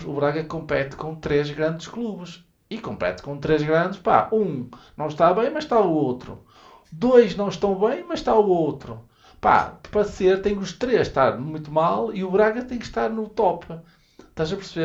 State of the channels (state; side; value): identical; both; correlation 1.00